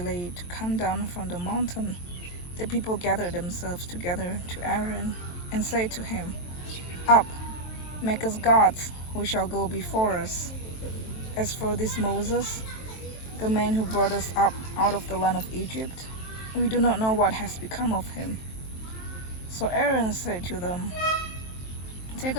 to come down from the mountain, the people gathered themselves together to Aaron and said to him, "Up, make us gods who shall go before us. As for this Moses, the man who brought us up out of the land of Egypt, we do not know what has become of him." So Aaron said to them, "Take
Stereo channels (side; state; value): right; late; 23 ms